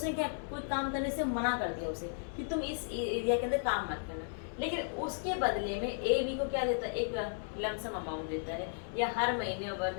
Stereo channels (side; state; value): right; silent; digital silence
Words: क्या कोई काम करने से मना कर दिया उसे कि तुम इस एरिया के अंदर काम मत करना, लेकिन उसके बदले में ए बी को क्या देता है, एक लमसम अमाउंट देता है या हर महीने